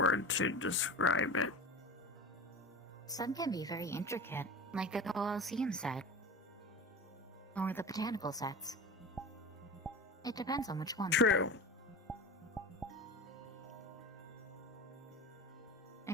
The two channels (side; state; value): both; normal; correlation 0.32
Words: to describe it. Some can be very intricate, like the Colosseum set. Or the botanical sets. It depends on which one. True. I